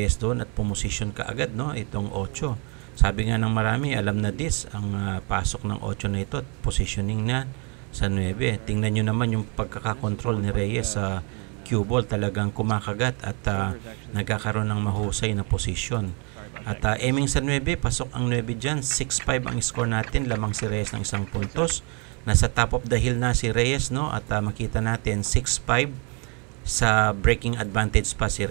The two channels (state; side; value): quieter; left; 34.7 dB